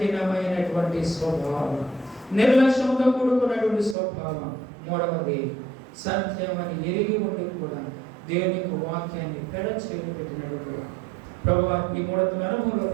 స్వభావం, నిర్లక్ష్యంతో కూడుకున్నటువంటి స్వభావం. మూడవది, సత్యమని ఎరిగి ఉండి కూడా దేవుని యొక్క వాక్యాన్ని పెడ చేసి పెట్టినటువంటి ప్రభువా, ఈ 3 అనుభవంలో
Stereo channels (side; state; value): left; drops out; at 4.0 s